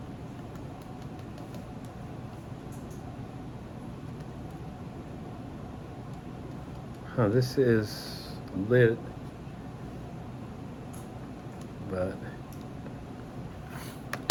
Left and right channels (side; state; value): both; identical; correlation 1.00